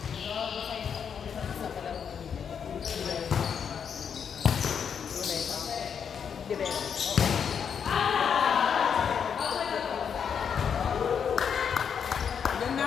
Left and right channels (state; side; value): quieter; right; 7.3 dB